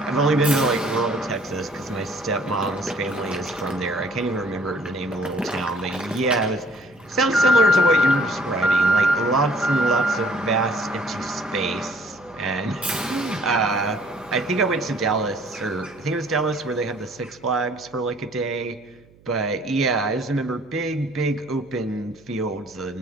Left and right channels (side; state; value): right; noise; hum, 28 dB below the sound